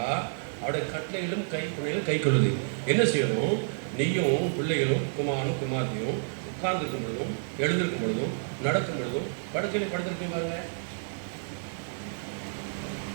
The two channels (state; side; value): silent; left; digital silence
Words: அவருடைய கட்டளைகளும் கை கொள்ளுது. என்ன செய்யணும்? நீயும் பிள்ளைகளும் குமாரனும் குமார்த்தியும் உட்கார்ந்துருக்கும் பொழுதும் எழுந்திருக்கும் பொழுதும் நடக்கும் பொழுதும் படுக்கையில படுத்திருக்கேன் பாருங்க.